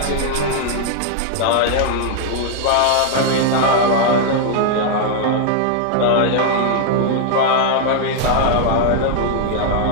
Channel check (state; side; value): different; both; correlation 0.00